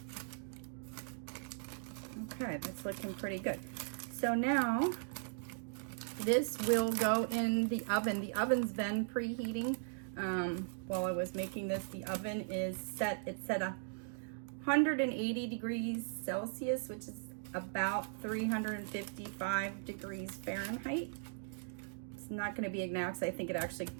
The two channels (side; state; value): left; silent; digital silence